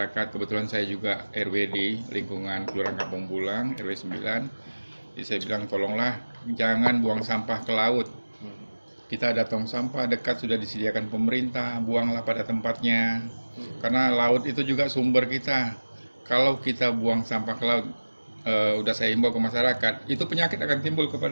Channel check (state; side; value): inverted; both; correlation -1.00